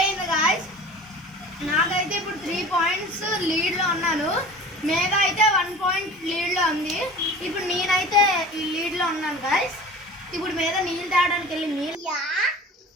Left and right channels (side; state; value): both; normal; correlation 0.40